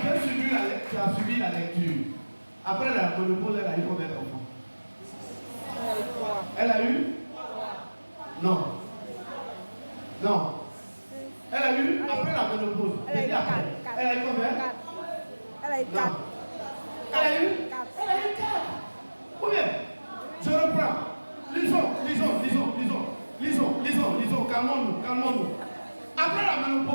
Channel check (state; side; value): inverted; both; correlation -1.00